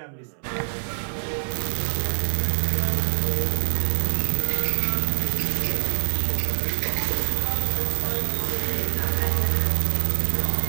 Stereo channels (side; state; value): left; silent; 62 dB below the other